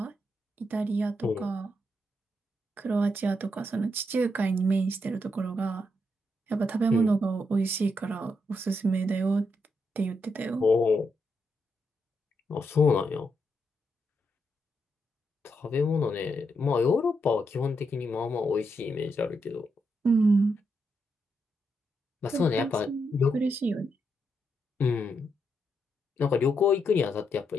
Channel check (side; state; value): both; normal; correlation 0.81